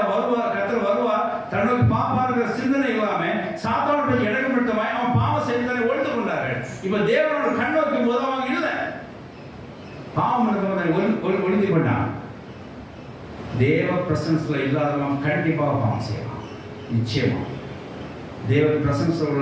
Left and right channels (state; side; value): identical; both; correlation 1.00